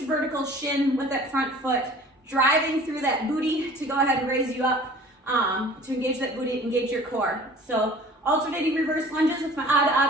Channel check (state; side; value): normal; both; correlation 0.47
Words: vertical shin with that front foot, driving through that booty to go ahead and raise you up, to engage that booty, engage your core. So alternating reverse lunges with my odd